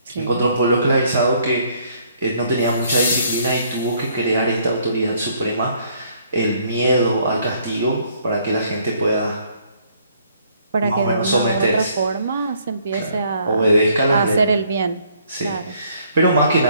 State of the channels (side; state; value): both; inverted; correlation -0.65